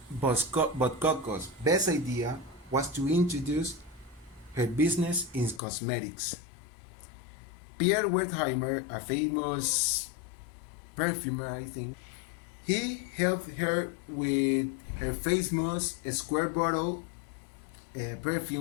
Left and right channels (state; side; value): drops out; right; at 5.6 s